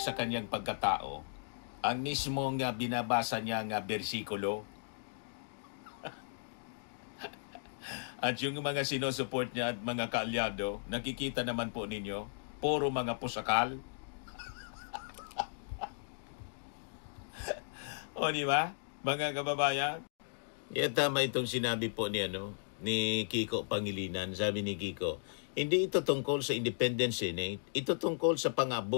sa kanyang pagkatao ang mismong binabasa niya nga bersikulo. At yung mga sinusupport niya at mga kaalyado, nakikita naman po ninyo, puro mga pusakal. O di ba, mga kababayan? Tama itong sinabi po ni Kiko Pangilinan. Sabi ni Kiko, hindi ito tungkol sa Independent Senate, ito tungkol sa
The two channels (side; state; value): right; silent; digital silence